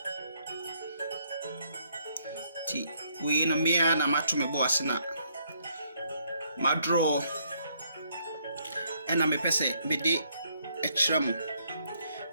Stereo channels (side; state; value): both; inverted; correlation -0.70